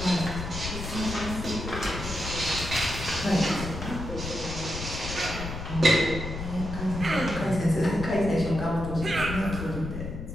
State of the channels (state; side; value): noise; left; rumble, 7 dB below the sound